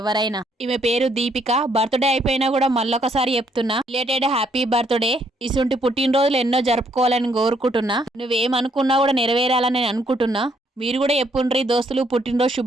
ఈమె పేరు దీపిక. బర్త్డే అయిపోయినా కూడా మళ్ళొకసారి చెప్తున్నా, రిలేటెడ్ హ్యాపీ బర్త్డే. ఇసుంటి పుట్టినరోజులు ఎన్నో జరుపుకోవాలని కోరుకుంటున్నా. నువ్వేమనుకున్నా కూడా నెరవేరాలని నేను అనుకుంటున్నా. మీరు కూడా చెప్పుండ్రి దోస్తులు పుట్టినరోజు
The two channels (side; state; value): both; normal; correlation 0.70